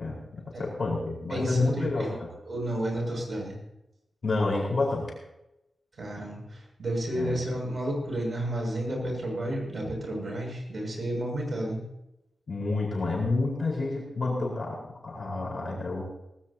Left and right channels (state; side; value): normal; both; correlation 0.89